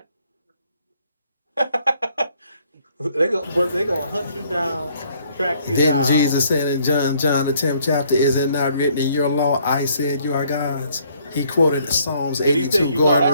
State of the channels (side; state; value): both; inverted; correlation -0.65